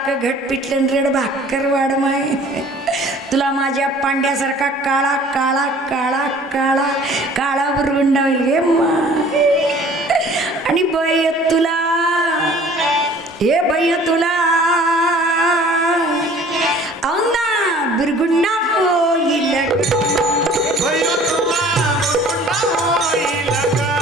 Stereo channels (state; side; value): normal; both; correlation 0.50